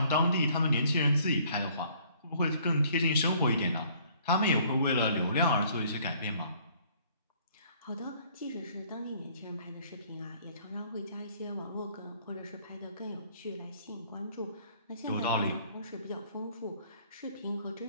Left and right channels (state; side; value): inverted; both; correlation -0.60